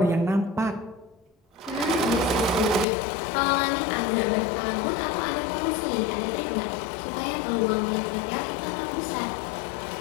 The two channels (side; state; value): right; drops out; at 2.9 s